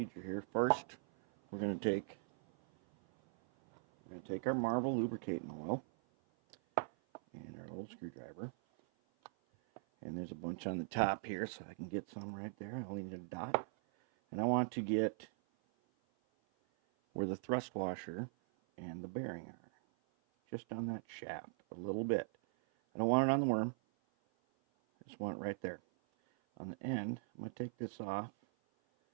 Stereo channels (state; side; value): silent; left; 51 dB below the other